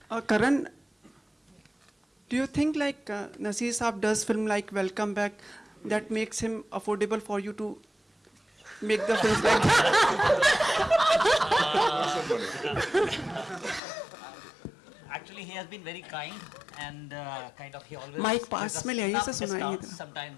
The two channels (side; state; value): right; drops out; at 13.8 s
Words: Karan, do you think like Naseer Saab does film like Welcome Back that makes him affordable for you to make the films like Actually, he has been very kind and kind of he always. Mic pass में ले आइए sir सुनाइए discounts.